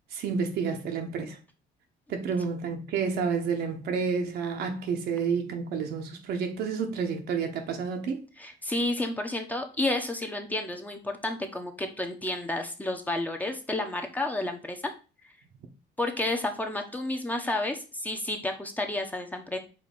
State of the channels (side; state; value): both; normal; correlation 0.51